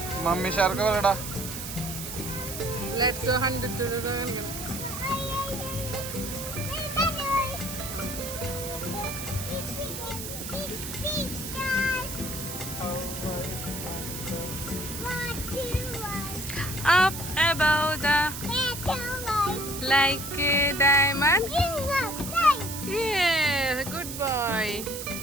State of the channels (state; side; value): noise; right; hiss, 8 dB below the sound